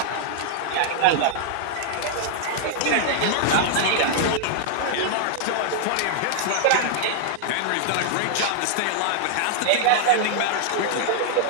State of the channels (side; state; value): both; different; correlation -0.01